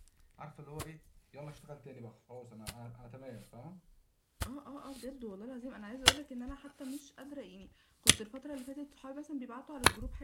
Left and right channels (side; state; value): both; identical; correlation 1.00